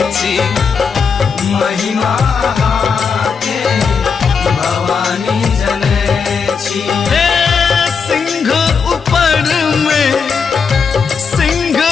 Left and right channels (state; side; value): quieter; right; 5.8 dB